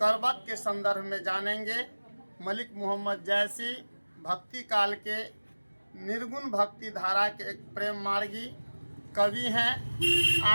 के संदर्भ में जानेंगे। मलिक मोहम्मद जैसी भक्ति काल के निर्गुण भक्ति धारा के एक प्रेम मार्गी कवि हैं।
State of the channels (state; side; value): inverted; both; correlation -1.00